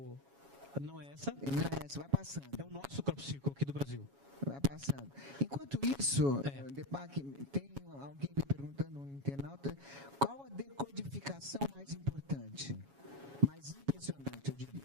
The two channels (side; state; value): left; late; 7.2 ms